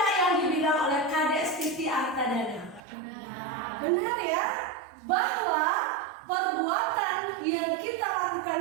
yang dibilang oleh Kadek Siti Artadana? Benar ya, bahwa perbuatan yang kita lakukan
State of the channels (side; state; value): left; drops out; at 2.8 s